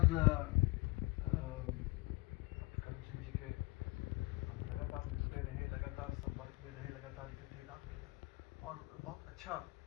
करम सिंह जी के हम लगातार मिलते रहे, लगातार संपर्क में रहे, लगातार इकट्ठे काम किया और बहुत अच्छा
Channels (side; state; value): right; quieter; 23.2 dB